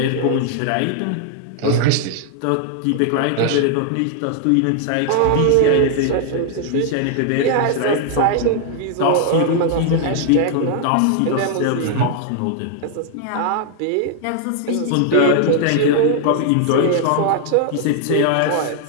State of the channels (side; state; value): both; different; correlation 0.00